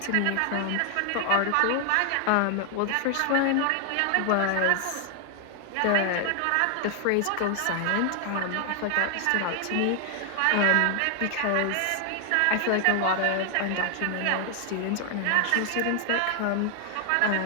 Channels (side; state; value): both; different; correlation 0.00